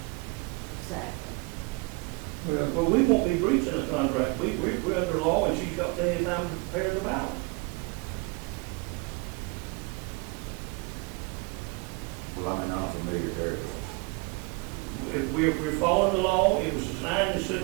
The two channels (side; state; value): left; quieter; 27.9 dB